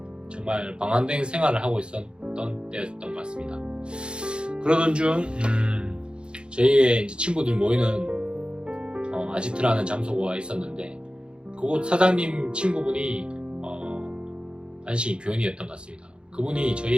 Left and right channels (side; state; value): left; late; 0.054 ms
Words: 정말 방황된 생활을 하고 있었던 때였던 것 같습니다. 그러던 중 저희의 이제 친구들 모이는 아지트라는 장소가 있었는데 그곳 사장님 친구분이 안식이 교인이었던 것 같습니다. 그분이